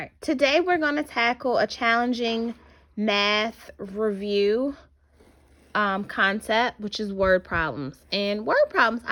right, today we're going to tackle a challenging math review concept, which is word problems. And word problems,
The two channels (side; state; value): both; identical; correlation 1.00